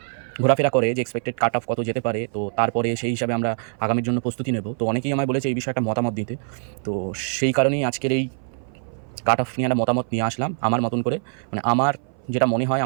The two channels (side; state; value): left; silent; 58 dB below the other